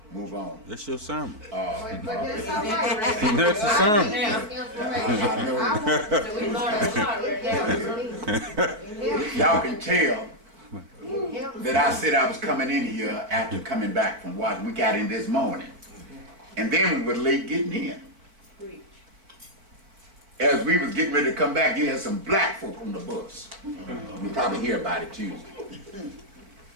move on. That's your sermon. But that's all right. That's the sermon. I know. So we learned a lot right now. Y'all can tell that I said I was coming in here after coming back from Washington. We got in this morning. And then we were late getting in. As we was getting ready to come back, you had some black folk on the bus. You'll probably hear about it Tuesday.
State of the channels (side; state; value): left; late; 4.6 ms